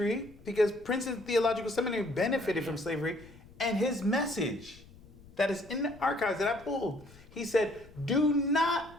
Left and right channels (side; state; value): left; noise; rumble, 22 dB below the sound